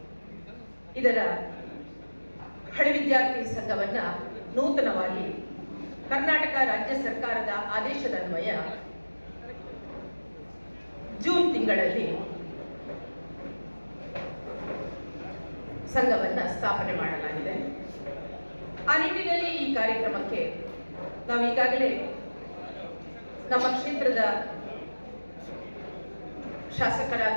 ಇದರ ಹಳೆ ವಿದ್ಯಾರ್ಥಿ ಸಂಘವನ್ನು ನೂತನವಾಗಿ ಕರ್ನಾಟಕ ರಾಜ್ಯ ಸರ್ಕಾರದ ಆದೇಶದನ್ವಯ ಜೂನ್ ತಿಂಗಳಲ್ಲಿ ಸಂಘವನ್ನು ಸ್ಥಾಪನೆ ಮಾಡಲಾಗಿದೆ. ಆ ನಿಟ್ಟಿನಲ್ಲಿ ಈ ಕಾರ್ಯಕ್ರಮಕ್ಕೆ ನಾವು ಈಗಾಗಲೇ ನಮ್ಮ ಕ್ಷೇತ್ರದ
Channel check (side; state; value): both; inverted; correlation -1.00